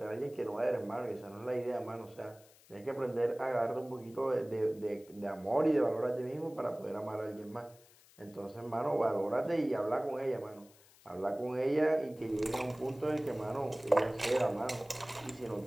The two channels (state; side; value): noise; left; hiss, 26 dB below the sound